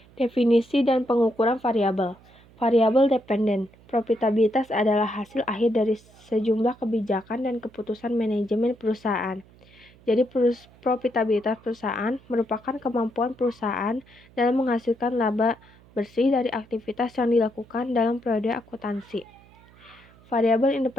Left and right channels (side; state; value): right; noise; hum, 26 dB below the sound